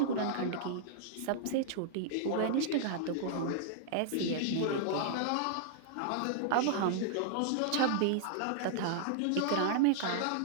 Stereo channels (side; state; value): both; different; correlation -0.01